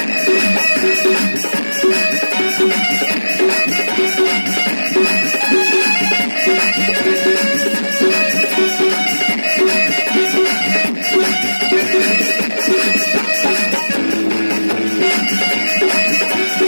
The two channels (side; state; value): both; inverted; correlation -1.00